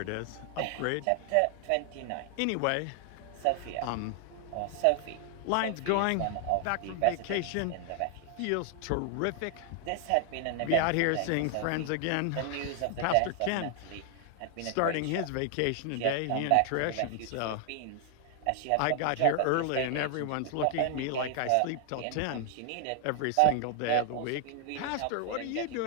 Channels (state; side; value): different; both; correlation 0.00